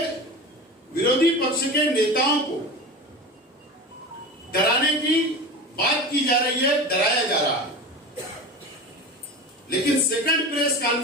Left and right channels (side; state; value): both; normal; correlation 0.30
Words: विरोधी पक्ष के नेताओं को डराने की बात की जा रही है, डराया जा रहा है। लेकिन सेकंड प्रेस